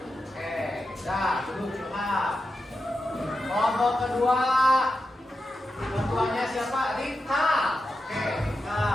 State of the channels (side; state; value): both; normal; correlation 0.89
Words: kedua, ketuanya siapa? Rika. Oke, Rika.